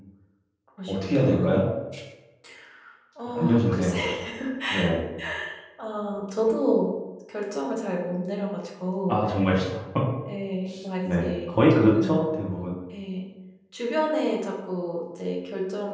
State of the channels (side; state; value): both; identical; correlation 1.00